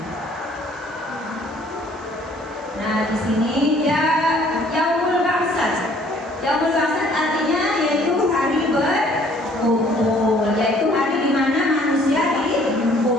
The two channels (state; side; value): normal; both; correlation 0.58